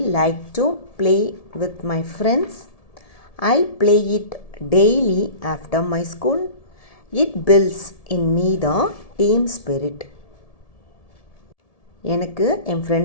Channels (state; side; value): late; right; 1.7 ms